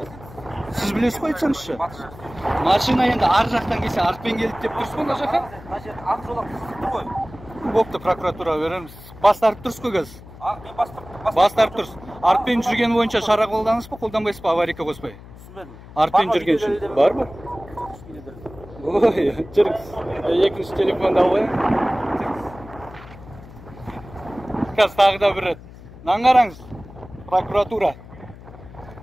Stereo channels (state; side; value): noise; left; hum, 18 dB below the sound